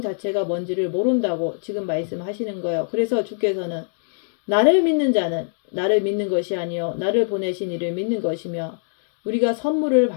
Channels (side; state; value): right; silent; digital silence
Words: 자체가 뭔지를 모른다고 지금 말씀하시는 거예요. 그래서 주께서는 나를 믿는 자는 나를 믿는 것이 아니요 나를 보내신 이를 믿는 것이며 우리가 선물을